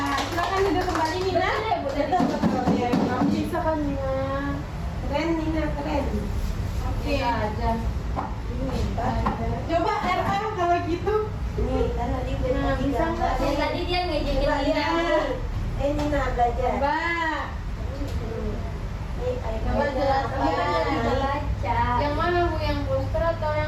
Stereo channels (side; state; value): both; identical; correlation 1.00